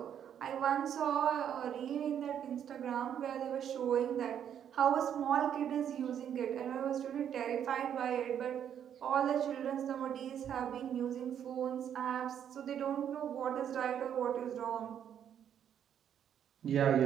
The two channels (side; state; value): left; quieter; 9.2 dB